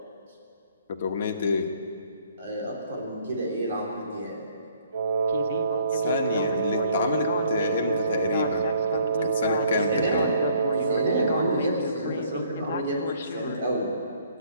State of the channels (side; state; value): both; inverted; correlation -0.61